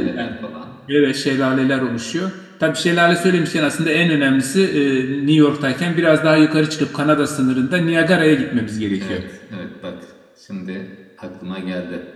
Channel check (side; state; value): both; identical; correlation 1.00